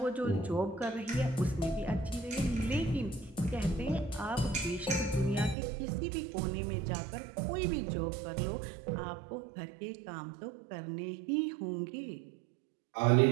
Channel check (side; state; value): left; drops out; at 5.6 s